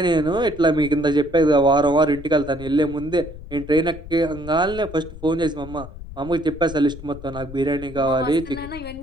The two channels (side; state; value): left; noise; rumble, 14 dB below the sound